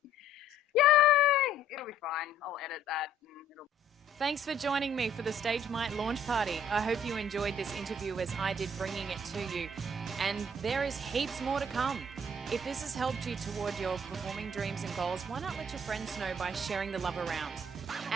Yay! It'll be fine. I'll edit that. Thanks for joining me for the Stage Might launch party. I hope you enjoyed this interview as I did, bringing it to you. And there is heaps more to come. If this has helped you toward your performing dreams and goals, why not let your friends know by sharing the love around?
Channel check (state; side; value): normal; both; correlation 0.59